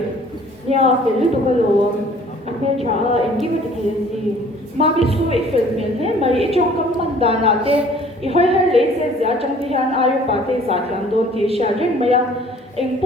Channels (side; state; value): both; normal; correlation 0.53